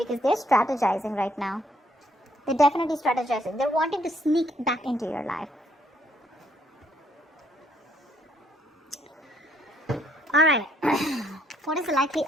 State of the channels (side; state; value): both; normal; correlation 0.69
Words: they're strategizing right now. They're definitely strategizing. They're wanting to sneak back into your life. Alright, what is the likely